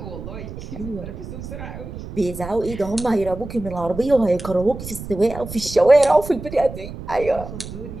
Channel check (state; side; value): noise; right; rumble, 11 dB below the sound